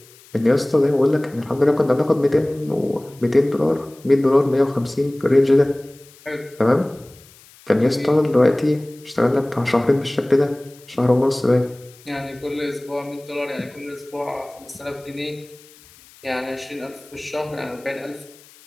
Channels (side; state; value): left; noise; hiss, 25 dB below the sound